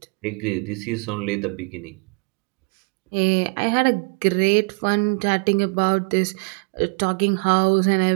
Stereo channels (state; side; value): quieter; left; 34.6 dB